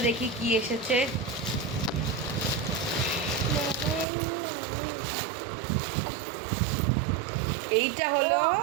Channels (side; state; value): left; drops out; at 4.0 s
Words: দেখি কি এসেছে। এইটা হলো